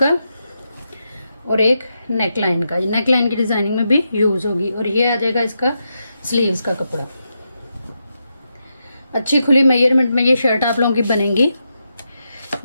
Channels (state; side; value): inverted; both; correlation -0.85